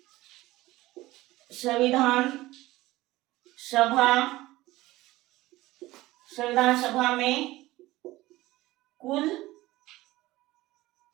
संविधान सभा में कुल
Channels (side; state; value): left; quieter; 18.0 dB